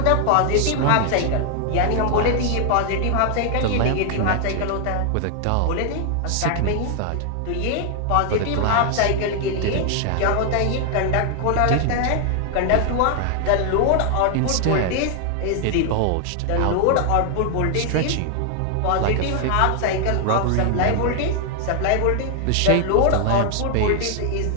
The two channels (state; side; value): different; both; correlation 0.00